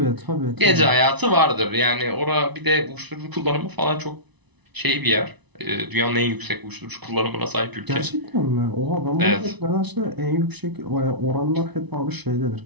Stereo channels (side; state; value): left; late; 1.0 ms